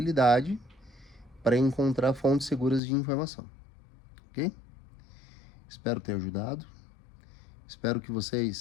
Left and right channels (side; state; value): right; drops out; at 2.8 s